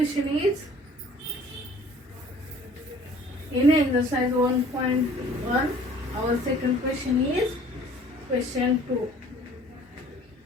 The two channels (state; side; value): normal; both; correlation 0.52